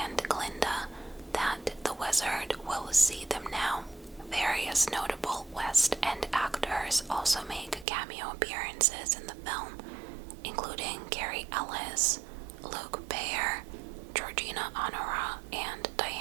Glinda that the wizard will see them now. Various notable West End actors also make cameo appearances in the film, including Carrie Ellis, Luke Bayer, Georgina Honora, and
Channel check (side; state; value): left; drops out; at 7.9 s